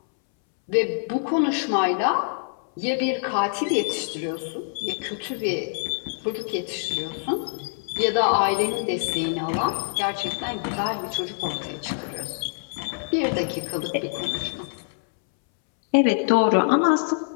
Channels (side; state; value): right; silent; 62 dB below the other